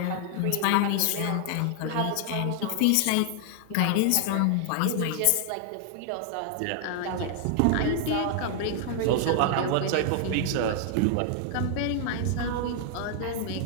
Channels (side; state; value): both; different; correlation 0.00